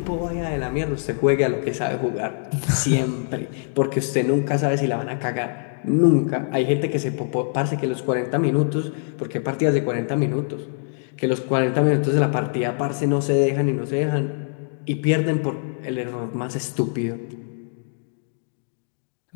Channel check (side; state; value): right; silent; digital silence